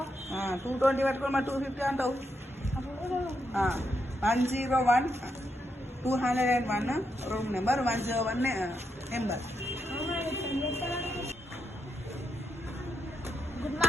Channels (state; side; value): normal; both; correlation 0.82